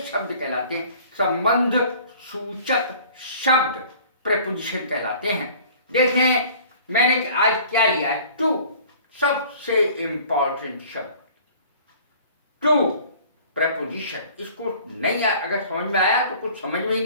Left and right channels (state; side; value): inverted; both; correlation -0.49